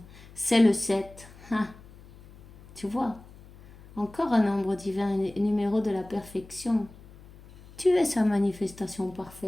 c'est le 7. Ah, tu vois? Encore un nombre divin, un numéro de la perfection. Tu es sa manifestation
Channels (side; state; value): left; noise; hum, 21 dB below the sound